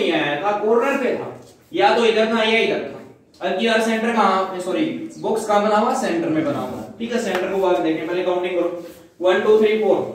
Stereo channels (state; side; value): identical; both; correlation 1.00